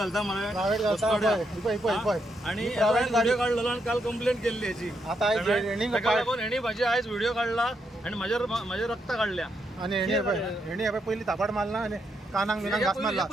मला प्रायव्हेट घालता आणि प्रायव्हेट गाडी काढलेलो आणि काल कंप्लेंट केली याची आता हेणी माझी आयज व्हिडिओ काढला आणि माझ्या रक्त काढल्या आणि हेणी पहिली थापाड मारला आणि कानांग बिनांग घास मारला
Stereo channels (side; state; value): both; normal; correlation 0.79